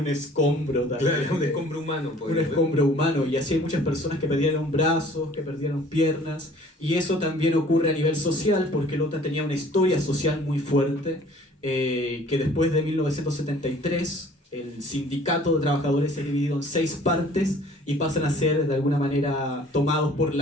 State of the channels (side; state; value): both; normal; correlation 0.52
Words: escombro también. Claro, un escombro humano. Un escombro humano, y así hay muchas personas que perdieron brazos, que perdieron piernas, y eso también ocurre a nivel social porque Lota tenía una historia social muy fuerte, que después de 1973 el sindicato de trabajadores se ha dividido en 6 partes y pasan a ser de alguna manera tomados por